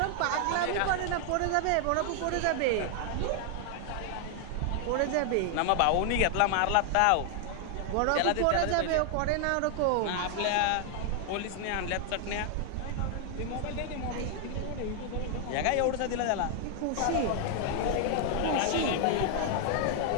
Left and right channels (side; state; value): both; different; correlation 0.00